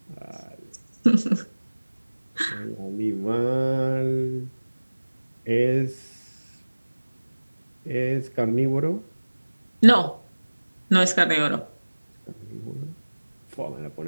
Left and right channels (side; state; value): both; inverted; correlation -1.00